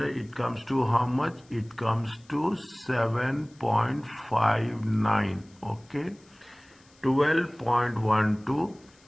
comes to how much? It comes to 7.59. Okay,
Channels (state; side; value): noise; left; hiss, 30 dB below the sound